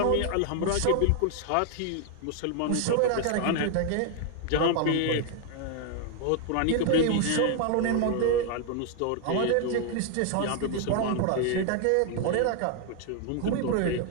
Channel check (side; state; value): both; different; correlation 0.00